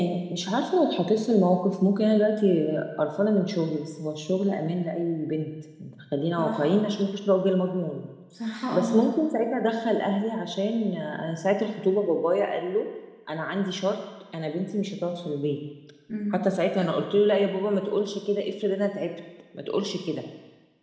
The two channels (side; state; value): both; identical; correlation 1.00